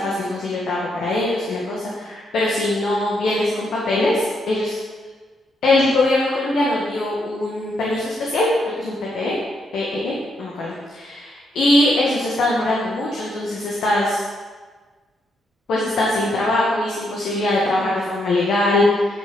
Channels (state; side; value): normal; both; correlation 0.77